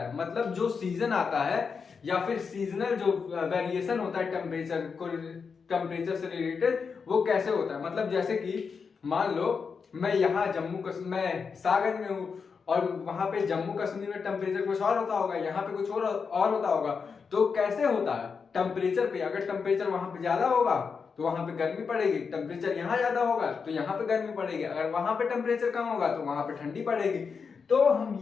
है, मतलब जो सीजन आता है या फिर सीजनल जो वेरिएशन होता है टेम्परेचर से रिलेटेड, वो कैसे होता है। मतलब जैसे कि मान लो मैं यहाँ मैं सागर में हूँ और वहां पे जम्मू कश्मीर में टेम्परेचर कुछ और होता होगा, यहाँ पे कुछ और होता होगा। तो कैसे होता है टेम्परेचर पे, अगर टेम्परेचर वहां पे ज्यादा होगा तो वहां पे गर्मी पड़ेगी, टेम्परेचर यहाँ ज्यादा होगा तो यहाँ पे गर्मी पड़ेगी, अगर वहां पे टेम्परेचर कम होगा तो वहां पे ठंडी पड़ेगी। तो हम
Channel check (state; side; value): quieter; right; 5.6 dB